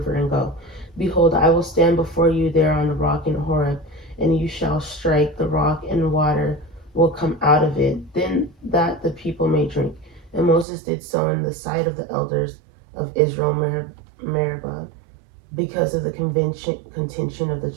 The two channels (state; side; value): drops out; left; at 10.7 s